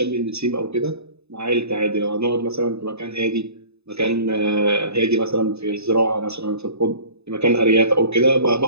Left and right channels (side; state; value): left; late; 0.79 ms